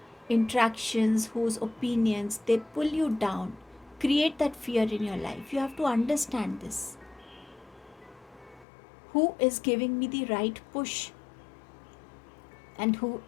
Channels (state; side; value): drops out; right; at 8.7 s